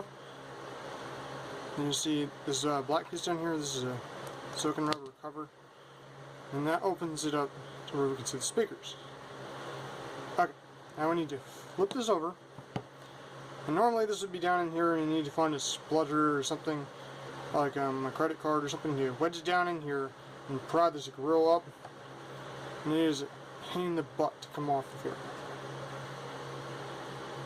you see this black piece down here. This is a silicone rubber cover, and that opens it up to where we can see the speakers. Okay, now we need to flip this over, and normally this would be down in here, and you need to find a splutter or something like a credit card or something to wedge it down in here and pry this grill up, and it is a pain in the butt to come off of here.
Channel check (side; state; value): both; identical; correlation 1.00